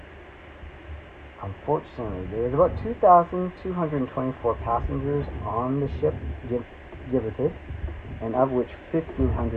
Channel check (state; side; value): identical; both; correlation 1.00